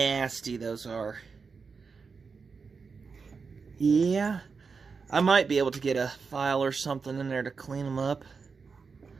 those are. Yeah, I might be able to get a file or something in there to clean them up.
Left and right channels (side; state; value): left; quieter; 5.1 dB